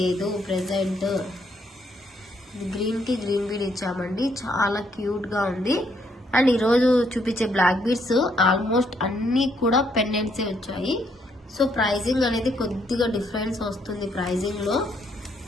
ప్రెసెంట్. గ్రీన్ కి గ్రీన్ బీడ్ ఇచ్చామండి, చాలా క్యూట్ గా ఉంది. అండ్ ఈరోజు చూపించే బ్లాక్ బీడ్స్ ఆల్మోస్ట్ అన్ని కూడా పెండెంట్సే వచ్చాయి. సో ప్రైజింగ్ అనేది కొద్దిగా డిఫరెన్స్ వస్తుంది ప్రైజింగ్ లో,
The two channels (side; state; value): both; normal; correlation 0.72